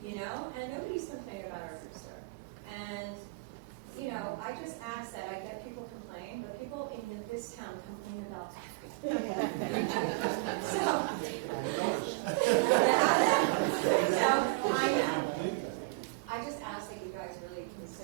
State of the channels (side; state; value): left; quieter; 28.3 dB